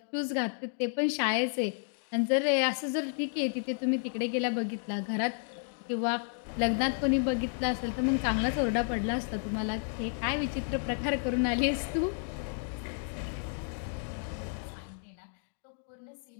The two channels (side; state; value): right; silent; 57 dB below the other